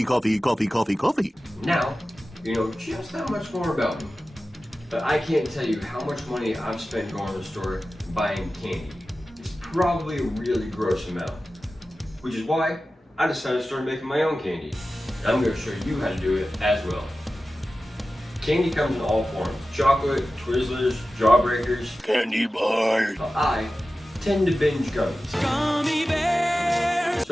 Coffee. Now, you know just that much more about me. But I can't tell you how much money I've spent going to the store buying candy. It's probably a really gross amount. Which is why I decided to start making my own candy. And I'm going to show you how to do it as well. Candy comes in all forms. Chocolate, Twizzlers, Jawbreakers, Candy bars. but I tend to binge gummies. Gummy bears.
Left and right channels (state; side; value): normal; both; correlation 0.95